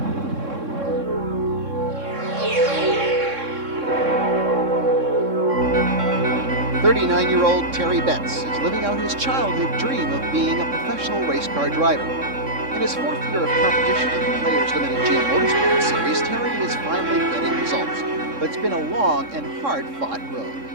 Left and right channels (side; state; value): left; late; 3.6 ms